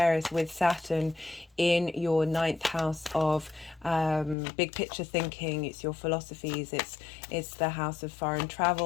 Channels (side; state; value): right; drops out; at 4.4 s